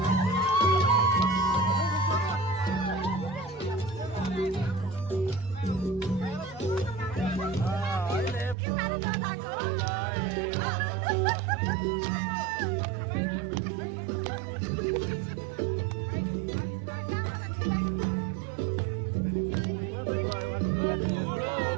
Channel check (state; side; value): drops out; left; at 8.6 s